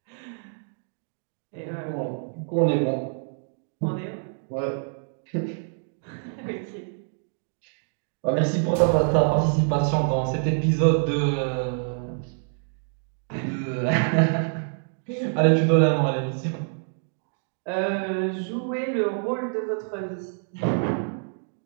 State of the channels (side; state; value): left; silent; 61 dB below the other